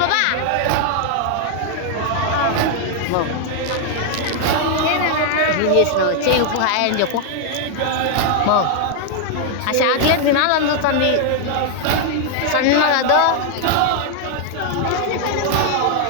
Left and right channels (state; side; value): different; both; correlation 0.00